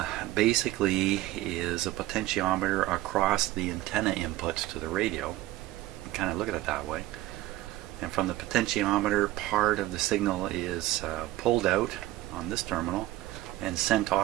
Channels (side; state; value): left; quieter; 16.3 dB